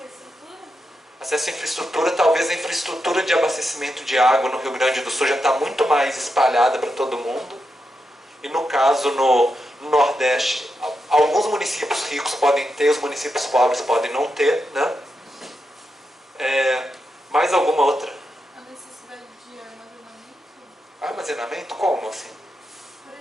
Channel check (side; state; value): both; normal; correlation 0.86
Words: Acesso à infraestrutura, talvez a infraestrutura de abastecimento de água no Rio Grande do Sul já está muito mais espalhada para todo mundo. E no caso, no Nordeste, alguns municípios ricos podem ter, os municípios pobres podem não ter, né? Mais alguma outra? A necessidade de armazenamento? Armazenamento? Como assim? Por